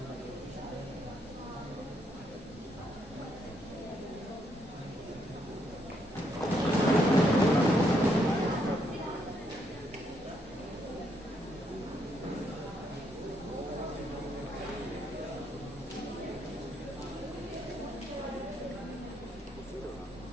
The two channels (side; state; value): both; normal; correlation 0.74